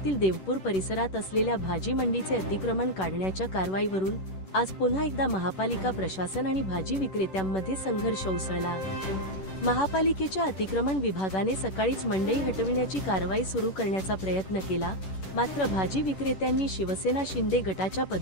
देवपूर परिसरात असलेल्या भाजी मंडीचे अतिक्रमण काढण्याच्या कारवाईवरून आज पुन्हा एकदा महापालिका प्रशासन आणि भाजी विक्रेत्यांमध्ये संघर्ष उसळला। महापालिकेच्या अतिक्रमण विभागाने सकाळीच मंडई हटविण्याची कारवाई सुरू करण्याचा प्रयत्न केला, मात्र भाजी विक्रेत्यांनी शिवसेना शिंदे गटाच्या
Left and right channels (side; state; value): right; late; 11 ms